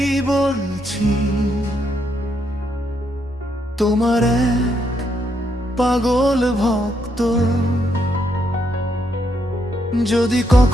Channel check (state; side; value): normal; both; correlation 0.77